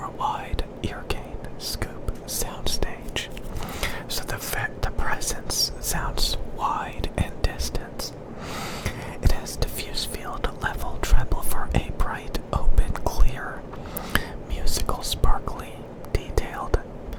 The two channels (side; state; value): both; identical; correlation 1.00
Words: a wide ear gain scoop soundstage, so the presence sounds wide and distant. It has diffuse field level treble for a bright, open, clear, musical, sparkly, detailed